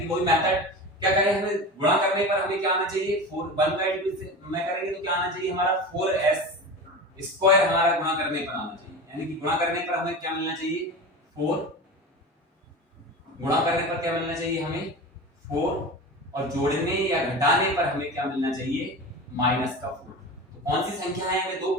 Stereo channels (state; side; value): normal; both; correlation 0.29